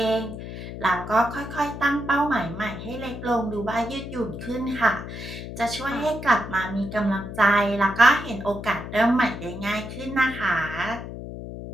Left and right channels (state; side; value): noise; left; hum, 9 dB below the sound